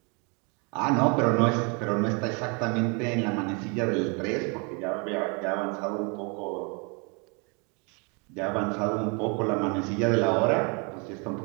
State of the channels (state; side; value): quieter; left; 33.1 dB